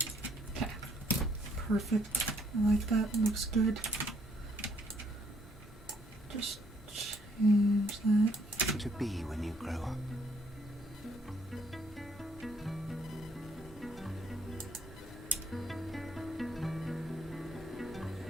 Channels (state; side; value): normal; both; correlation 0.67